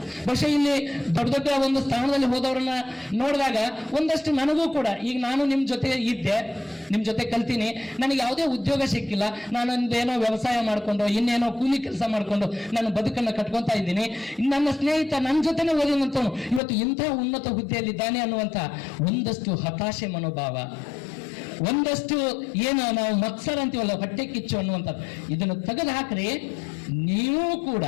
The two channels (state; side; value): drops out; right; at 16.6 s